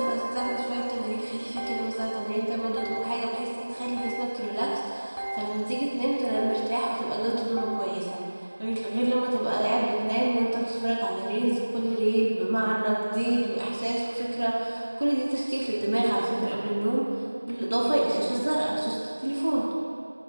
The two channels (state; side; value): inverted; both; correlation -1.00